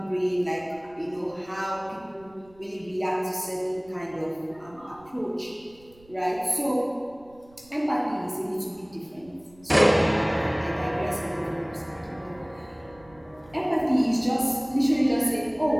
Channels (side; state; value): right; noise; rumble, 27 dB below the sound